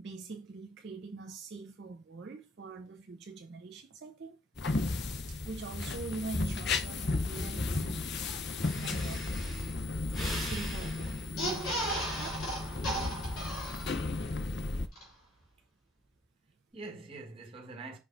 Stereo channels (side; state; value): both; normal; correlation 0.67